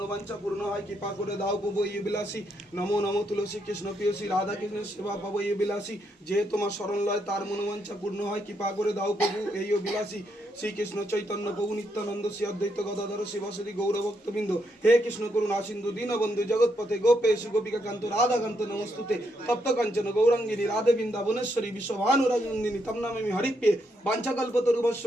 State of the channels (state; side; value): normal; both; correlation 0.78